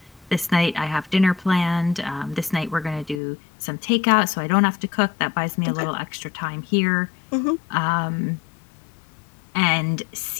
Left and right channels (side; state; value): right; drops out; at 3.2 s